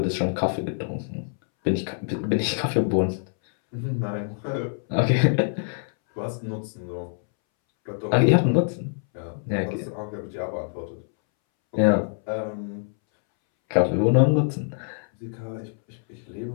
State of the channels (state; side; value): silent; right; 62 dB below the other